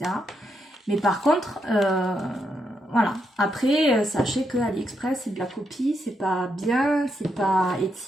Mais par contre, voilà. Après, sachez que AliExpress, c'est de la copie, c'est pas bien, c'est pas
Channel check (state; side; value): normal; both; correlation 0.80